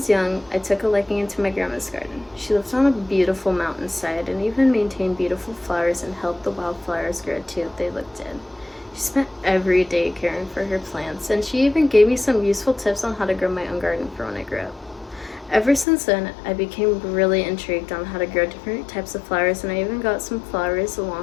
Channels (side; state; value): right; drops out; at 15.9 s